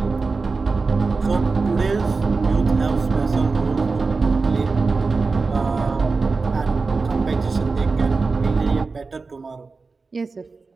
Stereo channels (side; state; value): left; quieter; 4.2 dB